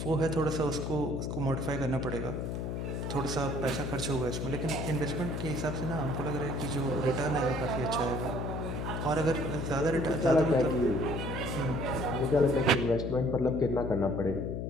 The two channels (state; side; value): noise; left; hum, 3 dB below the sound